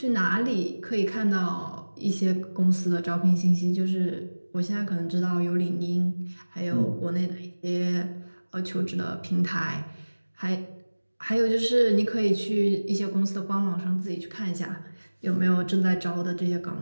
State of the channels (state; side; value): inverted; both; correlation -1.00